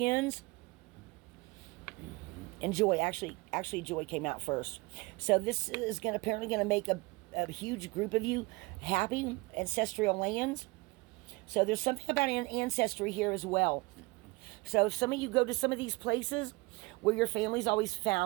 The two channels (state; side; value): quieter; left; 24.9 dB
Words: and joy. Actually, joy came out first. So this is apparently going to make a huge group of you happy. Ancestral lands. So there's something about ancestry here as well. So if some of you go to some of these places where your family's always